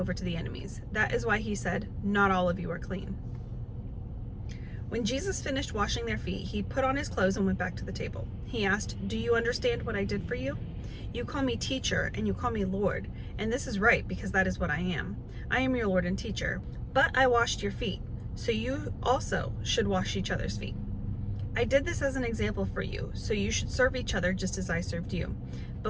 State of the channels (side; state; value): both; identical; correlation 1.00